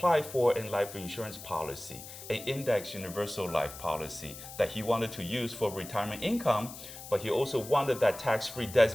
for a life insurance policy, an index universal life policy that he wanted to use for retirement income, but he also wanted that tax-free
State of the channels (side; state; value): left; noise; hiss, 13 dB below the sound